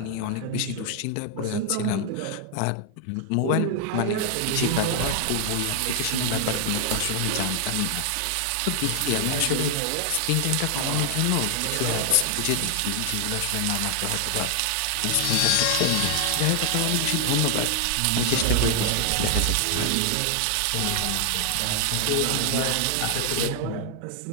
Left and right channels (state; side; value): different; both; correlation 0.00